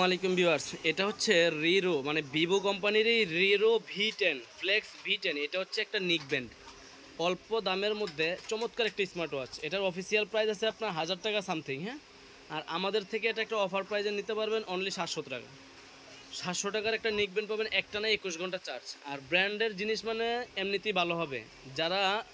আলাইকুম ভিউয়ার্স, এটা হচ্ছে রিরো মানে ভিভো কোম্পানির এই রিরো V10 ফ্লেক্স V10। এটা হচ্ছে একটা নিক ব্যান্ড, অল্প দামের মধ্যে চমৎকার একটা স্মার্ট ওয়াচ। এটার অফিসিয়াল প্রাইস আছে আপনার 1000 টাকা সামথিং। হ্যাঁ, আর আমাদের থেকে এটা একটা অফার প্রাইজে নিতে পারবেন অনলি 700 টাকা। 700 টাকার একটা নিক ব্যান্ড পাবেন, একটা না 21 ঘন্টা চার্জ। আর ব্র্যান্ডের জিনিস মানে এমনিতেই ভালো হবে। যারা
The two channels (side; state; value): both; identical; correlation 1.00